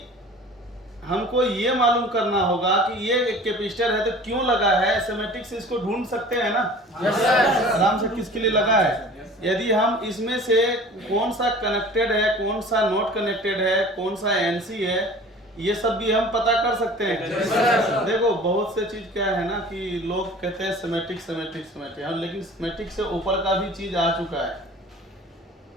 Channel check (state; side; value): normal; both; correlation 0.44